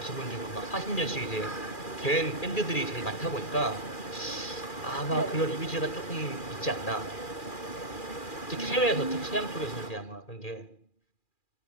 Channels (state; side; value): late; right; 2.4 ms